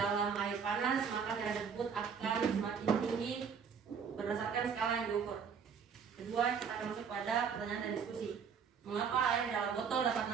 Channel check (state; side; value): quieter; left; 6.6 dB